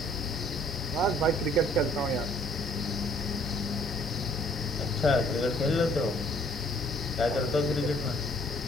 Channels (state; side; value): normal; both; correlation 0.59